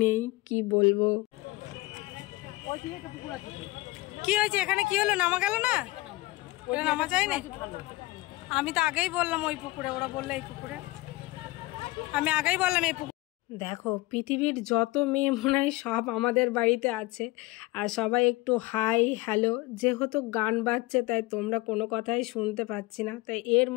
নেই, কি বলবো। কি হয়েছে এখানে, কি হলো, নামা গেল না? ওটা নামা যায় না? আমি তো আগেই বললাম ওই পুকুরে, ওরা বললে এই পুকুরে, আমি আগেই বললাম এই পুকুরে। দেখো পৃথিবীর যত মেয়ে মনে হয় সব আমাদের বাড়িতে আছে, আর সবাই একটু হাই হ্যালো। যেহেতু গান বাজছে তাই তোমরা কোনো কথাই শুনতে পাচ্ছি না, তাই এর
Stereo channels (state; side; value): quieter; right; 20.3 dB